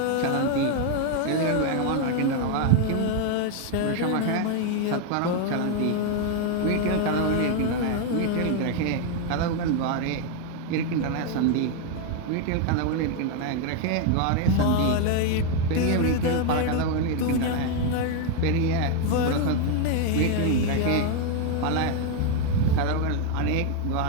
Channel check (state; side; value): different; both; correlation 0.01